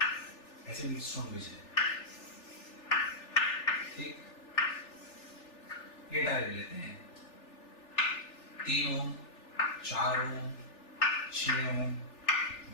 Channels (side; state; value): right; late; 3.4 ms